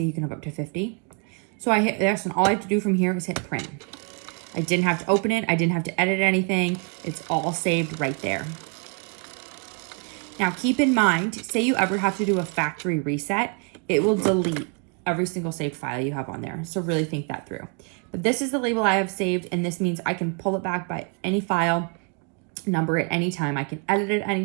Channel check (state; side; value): quieter; left; 34.9 dB